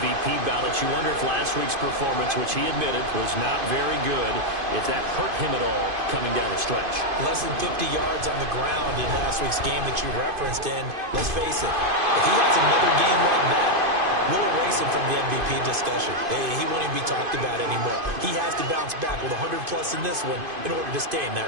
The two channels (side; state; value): left; late; 2.5 ms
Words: ballots. You wonder if last week's performance, which he admitted was not very good, if that hurt him at all coming down the stretch. Less than 50 yards on the ground in last week's game that you referenced. And let's face it, if he has another game like that, we'll erase him from the MVP discussion. He won't even be talked about anymore. He has to bounce back with 100-plus in this one in order to stay in